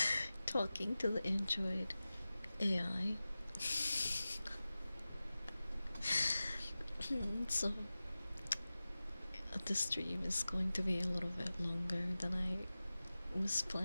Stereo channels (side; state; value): both; inverted; correlation -0.96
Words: talking to the Android AI. So the stream is going to be a little bit longer than I was